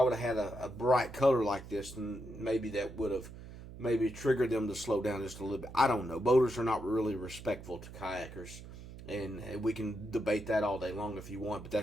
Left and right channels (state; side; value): noise; right; hum, 14 dB below the sound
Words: would have had a bright color like this, then maybe that would have maybe triggered them to slow down just a little bit. I don't know. Boaters are not really respectful to kayakers, and we can debate that all day long if you want, but